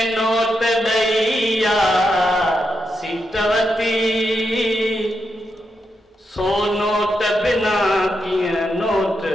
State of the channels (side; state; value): both; normal; correlation 0.84